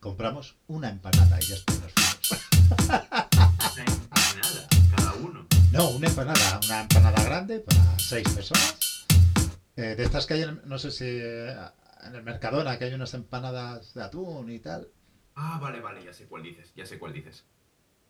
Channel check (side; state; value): both; identical; correlation 1.00